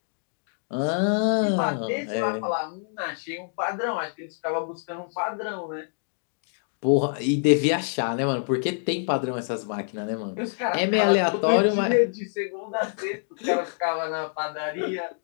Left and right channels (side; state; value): right; silent; digital silence